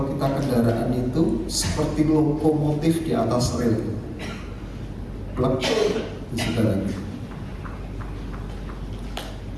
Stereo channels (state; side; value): identical; both; correlation 1.00